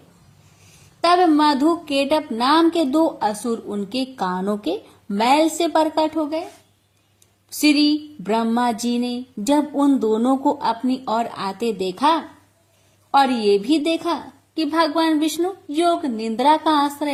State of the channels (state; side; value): identical; both; correlation 1.00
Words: तब मधु केटप नाम के 2 असुर उनके कानों के मैल से प्रकट हो गए। श्री ब्रह्मा जी ने जब उन दोनों को अपनी ओर आते देखा और ये भी देखा कि भगवान विष्णु योग निद्रा का